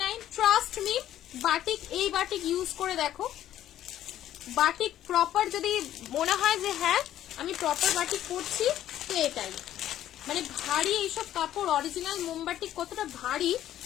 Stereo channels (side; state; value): right; quieter; 12.2 dB